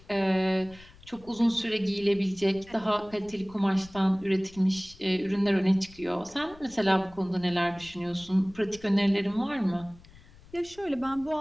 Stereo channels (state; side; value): noise; left; rumble, 23 dB below the sound